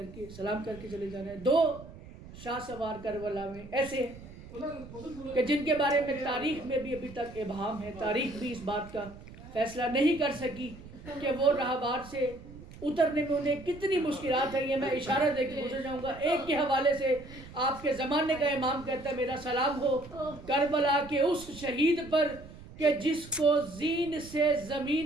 کے سلام کر کے چلے جانا ہے. 2 شاہ سوار کربلا میں ایسے ہیں کہ جن کے بارے میں تاریخ میں بھی ابھی تک ابہام ہے. تاریخ بھی اس بات کا فیصلہ نہیں کر سکی کہ وہ راہوار سے اترنے میں انہیں کتنی مشکلات ہیں. یہ میں اشارہ دے کے گزر جاؤں گا. ایک کے حوالے سے آپ کے زمانے کا امام کہتا ہے میرا سلام ہو کربلا کے اس شہید پر کہ جس کو زین سے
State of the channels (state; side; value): noise; right; rumble, 17 dB below the sound